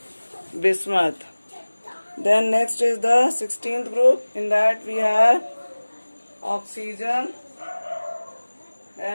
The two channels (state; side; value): inverted; both; correlation -1.00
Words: bismuth. Then next is the 16th group. In that we have oxygen,